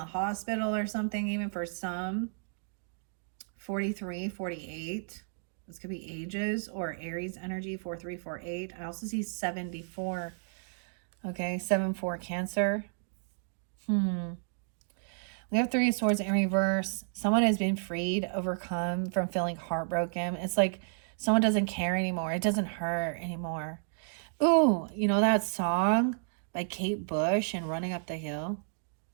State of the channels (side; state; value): left; silent; digital silence